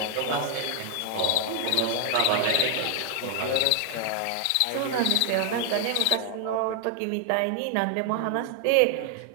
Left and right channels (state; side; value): different; both; correlation 0.00